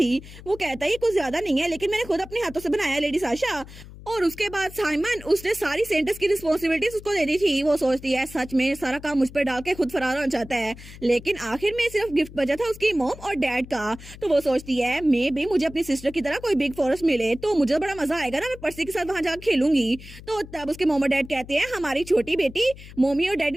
वो कहता है ये कुछ ज्यादा नहीं है लेकिन मैंने खुद अपने हाथों से बनाया है लेडी साशा। और उसके बाद साइमन उसने सारी सेंटर्स की रिस्पॉन्सिबिलिटीज उसको दे दी थी। वो सोचती है सच में सारा काम मुझ पर डाल के खुद फरार होना चाहता है, लेकिन आखिर में सिर्फ गिफ्ट बचा था उसकी मॉम और डैड का। तो वो सोचती है मे भी मुझे अपनी सिस्टर की तरह कोई बिग फॉरेस्ट मिले तो मुझे बड़ा मजा आएगा ना, मैं पर्सी के साथ वहां जाकर खेलूंगी। तो तब उसके मॉम और डैड कहते हैं हमारी छोटी बेटी मम्मी और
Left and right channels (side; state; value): left; noise; hum, 17 dB below the sound